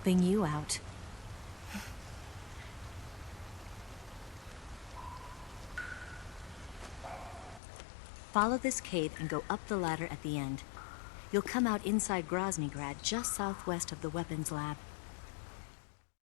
you out. Follow this cave and go up the ladder at the end. You'll come out inside Groznygrad, just southwest of the weapons lab.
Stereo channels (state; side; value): drops out; right; at 7.6 s